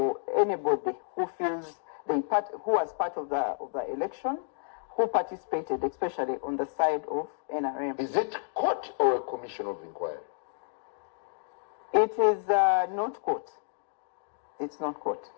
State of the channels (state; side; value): silent; right; digital silence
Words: anybody who feels who was part of the election, who participated, especially on the side of NRM. Is it court or a commission of inquiry? It is not court. It's not court.